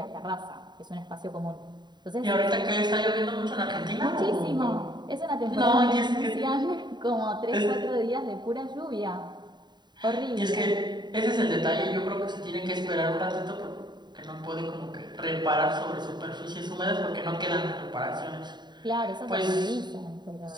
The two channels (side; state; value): left; late; 0.21 ms